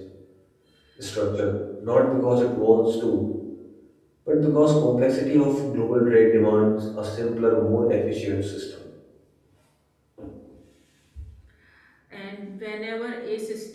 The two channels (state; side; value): identical; both; correlation 1.00